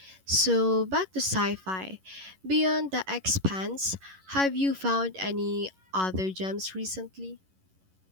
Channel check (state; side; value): late; left; 11 ms